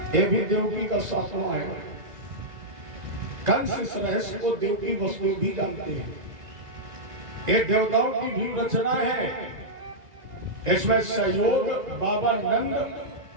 ये भी देवकी का सातवां है। कंस इस रहस्य को देवकी वसु भी जानते हैं। ये देवताओं की भी रचना है। इसमें सहयोग बाबा नंद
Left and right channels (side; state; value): left; late; 2.0 ms